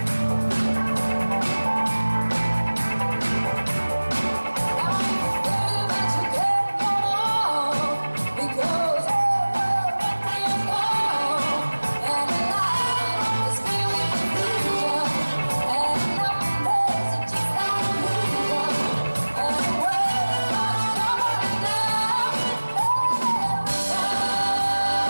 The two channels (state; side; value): inverted; both; correlation -1.00